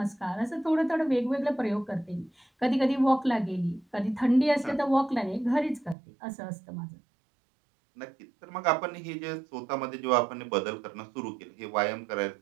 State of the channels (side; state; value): left; drops out; at 6.0 s